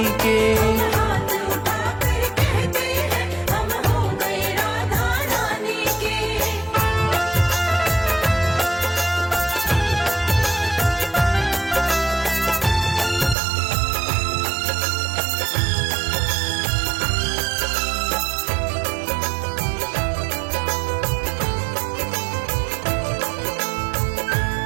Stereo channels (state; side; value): drops out; left; at 13.4 s